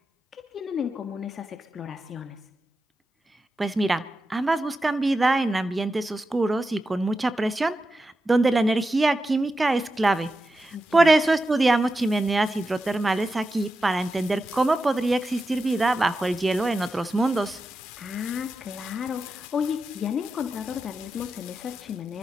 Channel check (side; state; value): both; normal; correlation 0.90